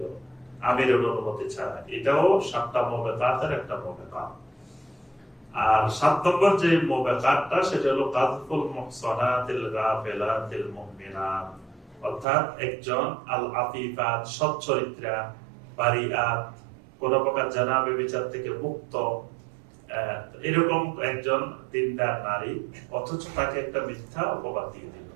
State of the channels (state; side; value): drops out; left; at 12.2 s